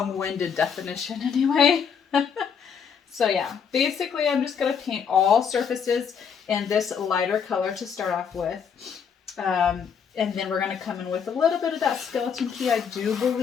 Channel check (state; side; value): quieter; right; 6.9 dB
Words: definition anyway. So yeah, basically I'm just going to paint all surfaces in this lighter color to start off with. And then we're going to come in with a little bit of that skeleton key, I do